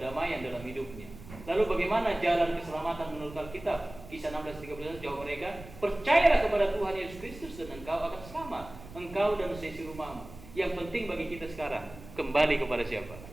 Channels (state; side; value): noise; right; rumble, 16 dB below the sound